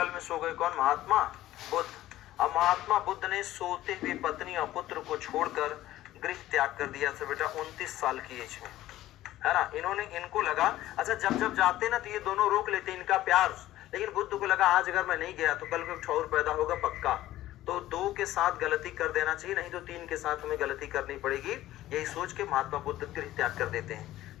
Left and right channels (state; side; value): quieter; right; 14.8 dB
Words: में सो गए कौन? महात्मा बुद्ध। अब महात्मा बुद्ध ने सोते हुए पत्नी और पुत्र को छोड़कर गृह त्याग कर दिया था बेटा 29 साल की एज में, है ना। इनको लगा, अच्छा जब जाते ना तो ये दोनों रोक लेते इनका प्यार, लेकिन बुद्ध को लगा आज अगर मैं नहीं गया तो कल को ठौर पैदा होगा पक्का, तो 2 के साथ गलती कर देना चाहिए, नहीं तो 3 के साथ हमें गलती करनी पड़ेगी। यही सोच के महात्मा बुद्ध गृह त्याग कर देते हैं।